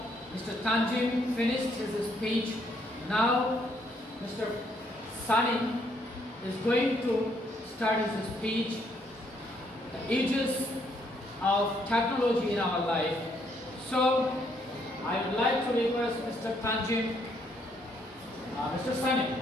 Mr. Tanjim finished his speech. Now, Mr. Sani is going to start his speech. The ages of technology in our life. So, I would like to request Mr. Tanjim,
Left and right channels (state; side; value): normal; both; correlation 0.71